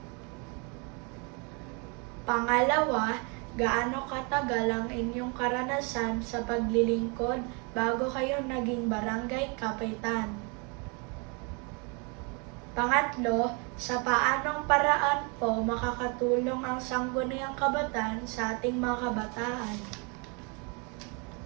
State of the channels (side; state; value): left; quieter; 33.2 dB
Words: Pangalawa, gaano katagal ang inyong karanasan sa paglilingkod bago kayo naging barangay kapitan? Pangatlo, sa paanong paraan po makakatulong ang Sangguniang Kabataan sa ating mga kabataan?